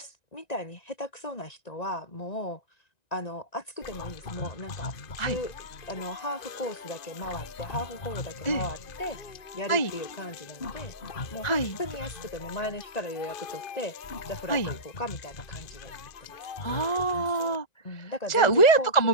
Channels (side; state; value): right; late; 1.9 ms